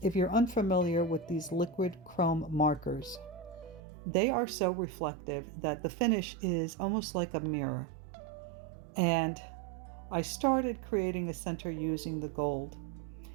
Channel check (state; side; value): drops out; left; at 3.8 s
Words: if you're unfamiliar with these liquid chrome markers, they are so reflective that the finish is almost like a mirror. And I started creating a center using the gold,